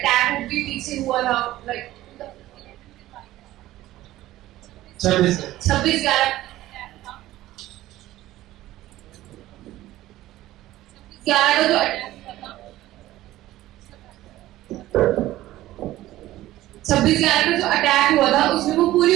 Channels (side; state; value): left; quieter; 15.5 dB